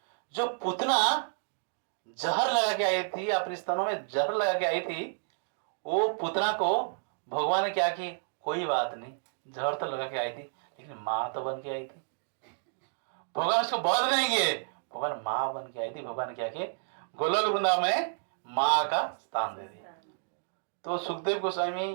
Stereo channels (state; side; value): silent; left; digital silence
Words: जो पुतना जहर लगा के आई थी, अपने स्तनों में जहर लगा के आई थी, वो पुतना को भगवान ने क्या की, कोई बात नहीं, जहर तो लगा के आई थी, लेकिन माँ तो बन के आई थी। भगवान उसको बहुत नहीं किए, भगवान माँ बन के आई थी। भगवान ने क्या किए, गोलोक वृंदावन में माँ का स्थान दे दिया। तो सुखदेव